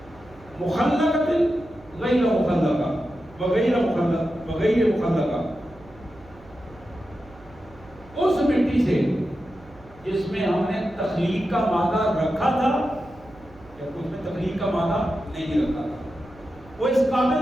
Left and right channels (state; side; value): noise; right; hum, 24 dB below the sound